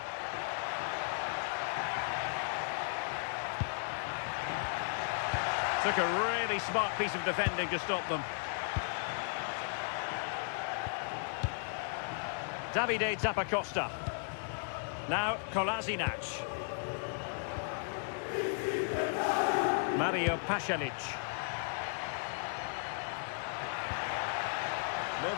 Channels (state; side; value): silent; right; digital silence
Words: Took a really smart piece of defending to stop them. Davide Zappacosta. Now Kolasinac. Mario Pasalic.